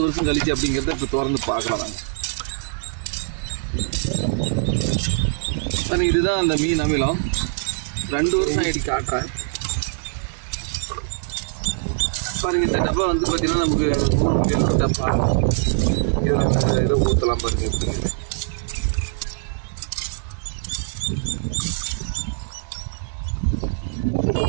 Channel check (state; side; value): silent; left; digital silence